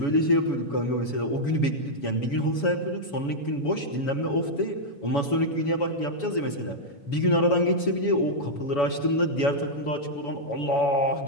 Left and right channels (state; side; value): late; right; 7.0 ms